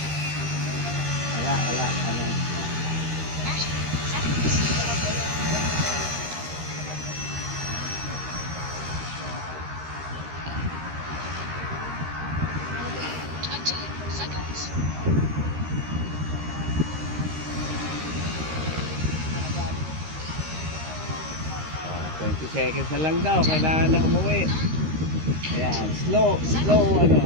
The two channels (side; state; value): left; late; 13 ms